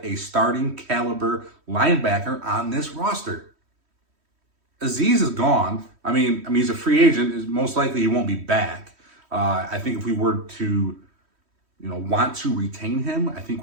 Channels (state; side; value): late; left; 3.1 ms